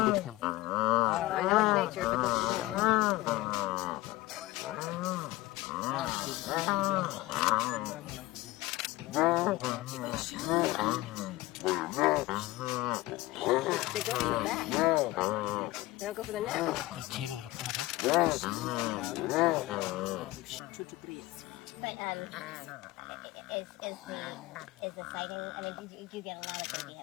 get him. I know it's nature, but they go for the back. They don't go for the neck. They're tearing it apart, huh? But is the sighting? I mean, do you get a lot of baby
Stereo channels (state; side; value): quieter; right; 18.8 dB